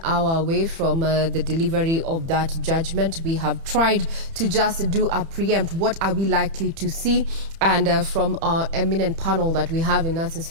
hour away from the delivery of that judgment. We have tried to just do a preempt. What are we likely to see? And from our eminent panel that we have in our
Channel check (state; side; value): late; left; 30 ms